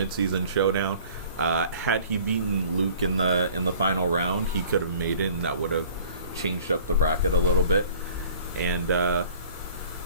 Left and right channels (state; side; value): inverted; both; correlation -0.50